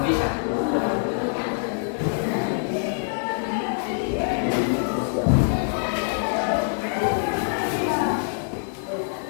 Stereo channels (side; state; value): right; silent; 62 dB below the other